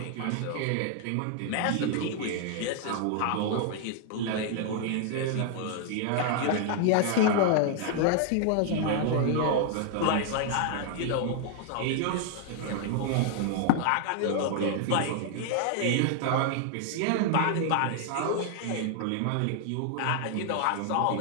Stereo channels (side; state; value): both; different; correlation 0.00